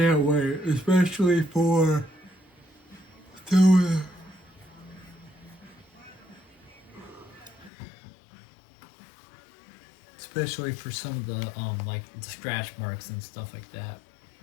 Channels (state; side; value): drops out; right; at 7.7 s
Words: wait, especially for especially for some of the like the scratch marks and stuff like that.